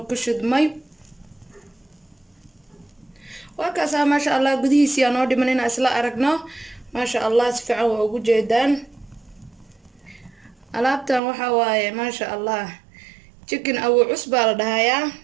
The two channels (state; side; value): drops out; left; at 11.2 s